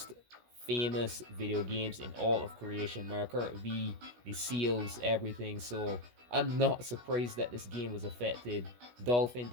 famous video games in all of creation. Mario Kart V, the seals, everything. So I'm not surprised that this game was affected. Dolphin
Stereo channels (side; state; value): left; late; 16 ms